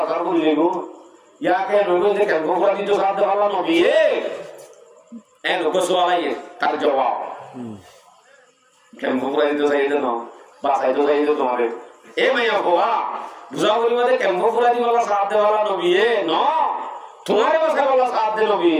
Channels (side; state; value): both; identical; correlation 1.00